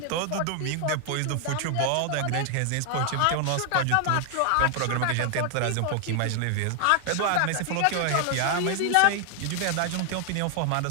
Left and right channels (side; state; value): both; different; correlation 0.00